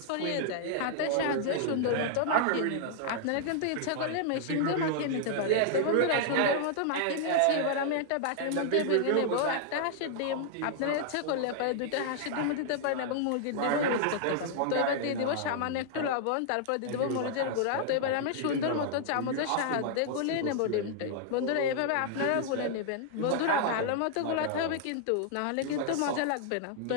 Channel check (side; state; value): both; different; correlation -0.01